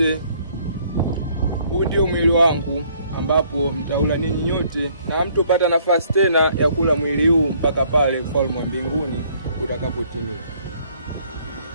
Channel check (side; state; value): both; inverted; correlation -0.63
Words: huu ndio mwili wangu ambapo mtaula ninyi nyote, na hamtopata nafasi tena ya kula mwili huu mpaka pale ufalme wa mbinguni utakapotimia.